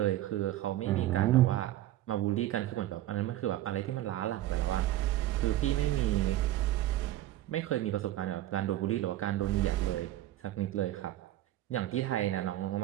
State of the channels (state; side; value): quieter; left; 14.3 dB